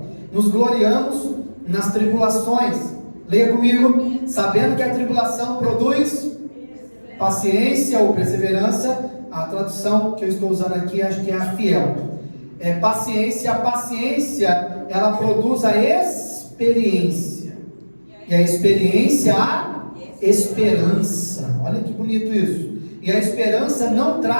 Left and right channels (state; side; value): inverted; both; correlation -1.00